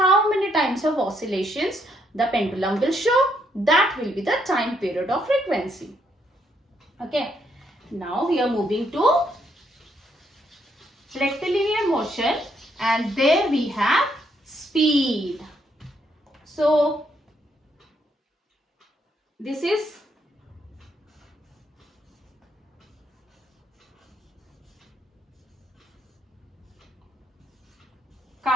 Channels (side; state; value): both; normal; correlation 0.74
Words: many times of oscillations the pendulum will show? That will be the time period of frequency. Okay. Now we are moving to rectilinear motion, and there we have speed. So this is